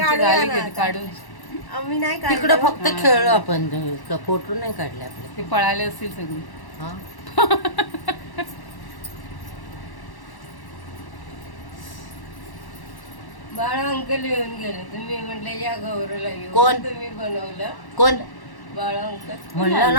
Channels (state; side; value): late; right; 1.1 ms